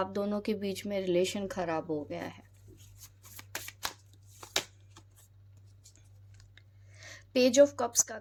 दोनों के बीच में रिलेशन खराब हो गया है। पेज ऑफ कप्स का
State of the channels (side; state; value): both; identical; correlation 1.00